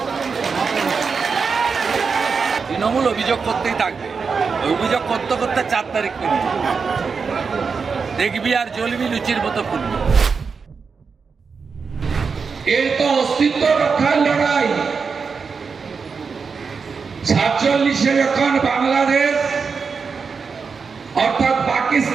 তৃণমূল অভিযোগ করতেই থাকবে, অভিযোগ করতে করতে 4 তারিখ করবি, দেখবি আর জ্বলবি লুচির মতো ফুলবি। এর তো অস্তিত্ব রক্ষার লড়াই। 47-এ যখন বাংলাদেশ অর্থাৎ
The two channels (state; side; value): quieter; left; 5.3 dB